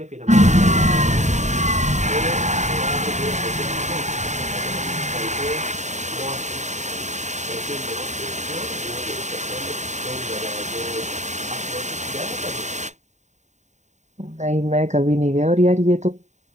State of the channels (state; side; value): late; left; 0.34 ms